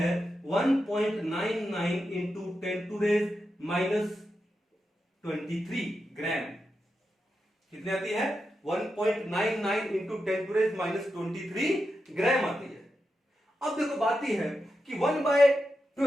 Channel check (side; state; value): both; normal; correlation 0.88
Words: 1.99 into 10⁻⁻³ ग्राम। कितनी आती है 1.99 इंटू 10⁻⁻23 ग्राम आती है। अब देखो बात यह है कि